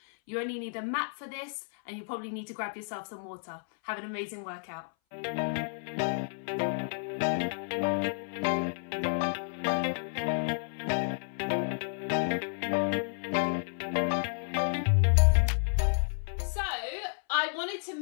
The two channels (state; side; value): silent; right; 57 dB below the other